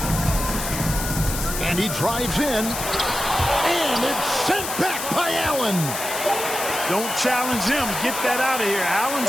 And he drives in. And it's sent back by Allen. Don't challenge him. Get that out of here.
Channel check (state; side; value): noise; left; hiss, 5 dB below the sound